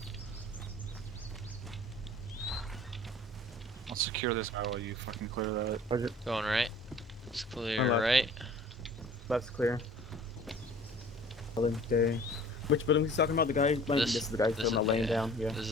I'll secure this guy while you fucking clear that. Okay. Going right. It's clear Left. right. Left's clear. Building day. Which building he's talking about? The guy? This is the guy still not laying down. Yeah. This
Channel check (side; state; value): both; normal; correlation 0.48